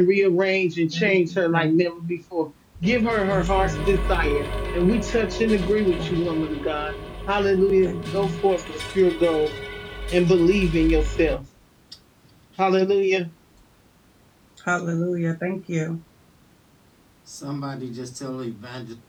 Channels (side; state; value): both; identical; correlation 1.00